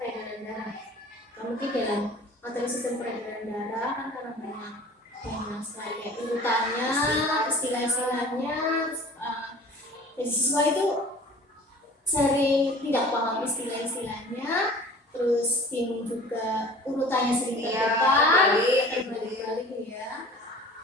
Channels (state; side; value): normal; both; correlation 0.44